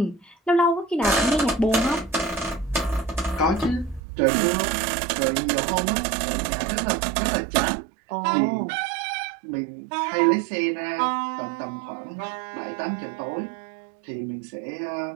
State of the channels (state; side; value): drops out; left; at 4.0 s